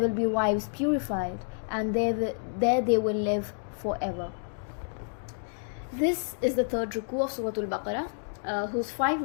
will be wives purified, and there they will live forever. This is the third ruku of Surah Al-Baqarah, whose 5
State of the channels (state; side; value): silent; right; digital silence